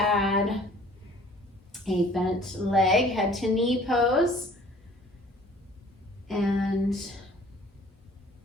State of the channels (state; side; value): normal; both; correlation 0.52